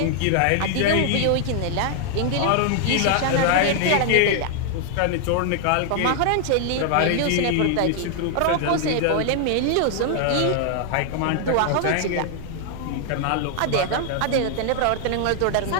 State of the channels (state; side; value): different; both; correlation 0.00